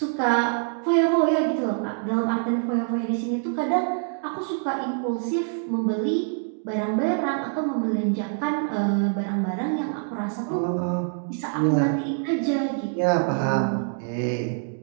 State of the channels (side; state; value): left; silent; 62 dB below the other